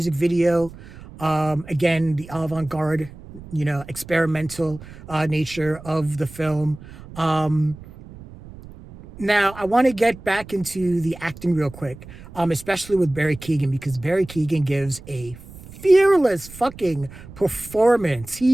video. Again, the avant-garde, experimental nature of the film. Now, I want to get back into the acting real quick, especially with Barry Keoghan, because Barry Keoghan gives a fearless fucking performance.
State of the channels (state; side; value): noise; right; rumble, 17 dB below the sound